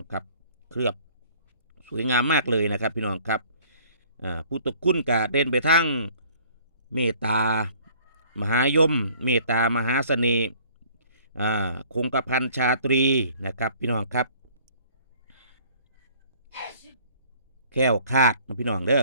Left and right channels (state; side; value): inverted; both; correlation -0.55